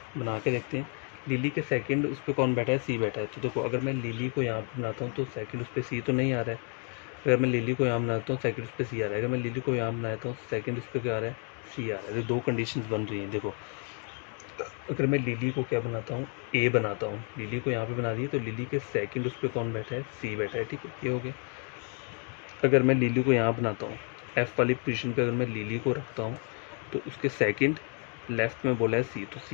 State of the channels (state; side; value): quieter; right; 39.9 dB